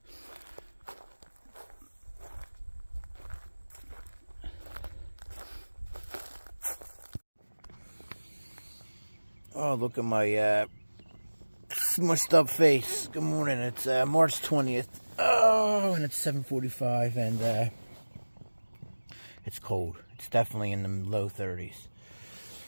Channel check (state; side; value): inverted; both; correlation -1.00